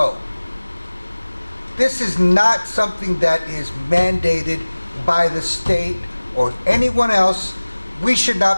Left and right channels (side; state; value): both; inverted; correlation -1.00